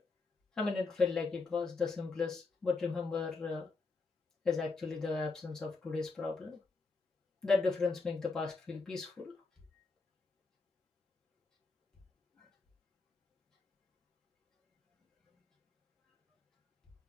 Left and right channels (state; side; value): quieter; right; 4.0 dB